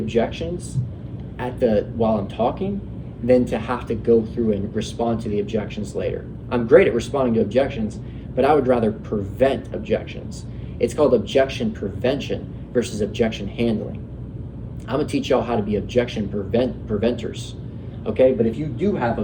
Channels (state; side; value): identical; both; correlation 1.00